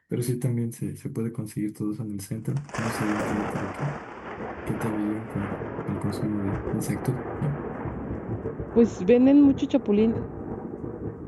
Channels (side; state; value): both; identical; correlation 1.00